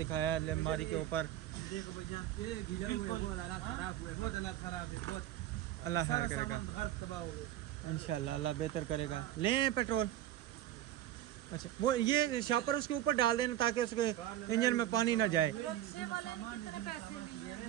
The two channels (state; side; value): quieter; left; 12.7 dB